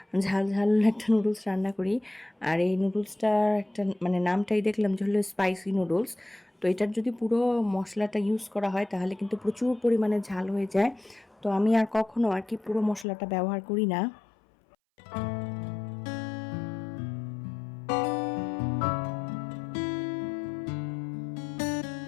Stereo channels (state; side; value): drops out; right; at 13.1 s